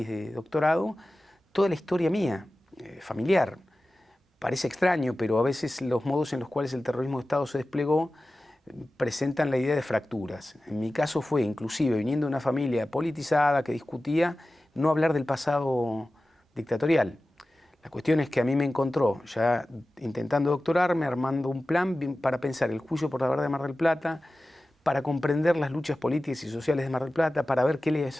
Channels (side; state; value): both; normal; correlation 0.96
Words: de doctorado, toda la historia mía, familiar. Parece extraño, pero a veces los modos en los cuales el terrorismo de Estado se desplegó presentan la idea de fracturas. En mi caso fue, inclusive, viniendo de una familia politizada que discutía, no hablar del pasado dictatorial. La cuestión es que a mí me encontró, ya intentando doctorarme, armando un plan para pensar el juicio por la verdad de Mar del Plata, para comprender las luchas políticas y sociales de Mar del Plata, para ver qué